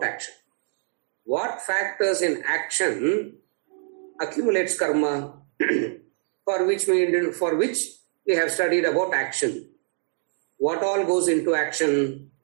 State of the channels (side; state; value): left; silent; 57 dB below the other